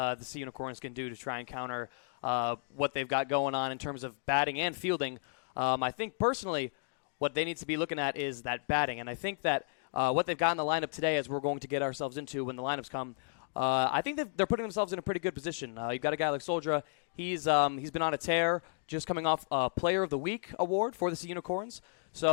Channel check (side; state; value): right; silent; digital silence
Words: Sea Unicorns can do to try and counter what they've got going on in terms of batting and fielding. I think personally what they need to be looking at is that batting, and I think that what they've got in the lineup today, as we're going to get ourselves into when the lineups come, I think they're putting themselves in a pretty good position. You've got a guy like Soldra. He's been on a tear, just coming off a Player of the Week award for the Sea Unicorns.